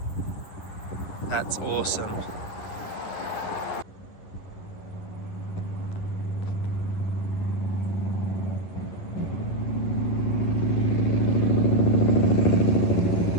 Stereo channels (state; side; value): late; right; 11 ms